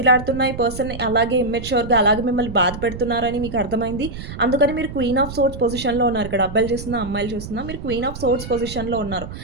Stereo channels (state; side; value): noise; right; rumble, 10 dB below the sound